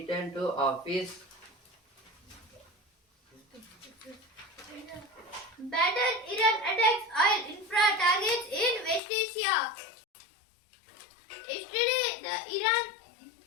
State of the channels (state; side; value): drops out; right; at 9.0 s